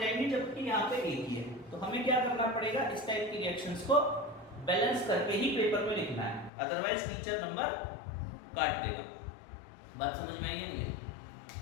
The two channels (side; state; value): right; drops out; at 6.5 s